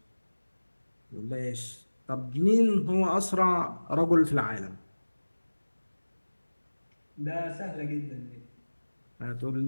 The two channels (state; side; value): inverted; both; correlation -1.00